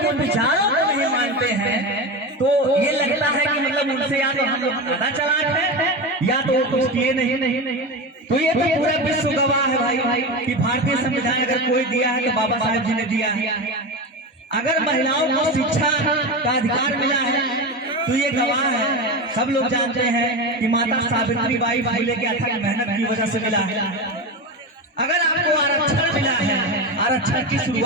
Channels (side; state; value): both; normal; correlation 0.21